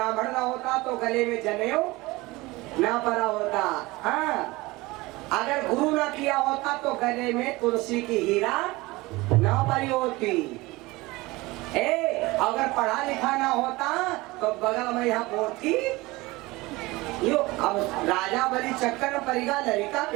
ना होता तो गले में जनेऊ ना पड़ा होता। हाँ अगर गुरु ना किया होता तो गले में तुलसी की हीरा ना पड़ी होती। अगर पढ़ा लिखा ना होता तो बगल में यहाँ पोथी यो। अब राजा बलि चक्कर में परिगा लड़का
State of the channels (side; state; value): left; quieter; 21.3 dB